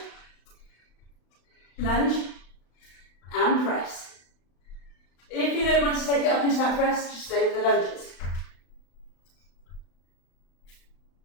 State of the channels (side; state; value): right; late; 35 ms